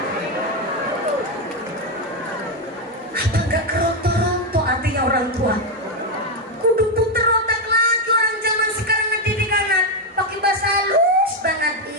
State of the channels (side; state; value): both; normal; correlation 0.05